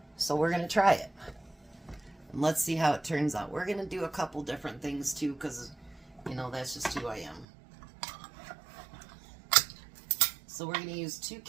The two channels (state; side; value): drops out; left; at 7.5 s